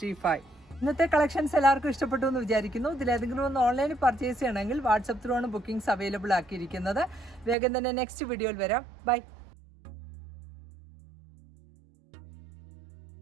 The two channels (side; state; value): left; drops out; at 7.6 s